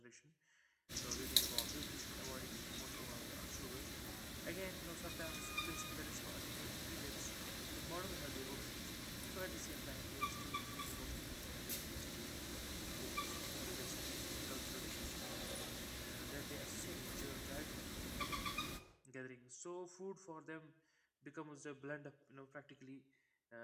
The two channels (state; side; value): identical; both; correlation 1.00